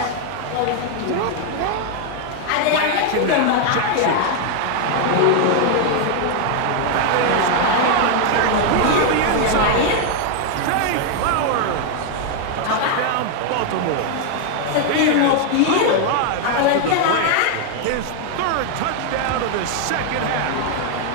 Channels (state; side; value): different; both; correlation 0.00